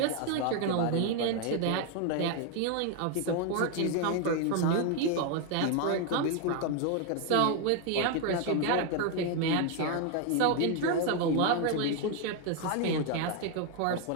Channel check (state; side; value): different; both; correlation 0.01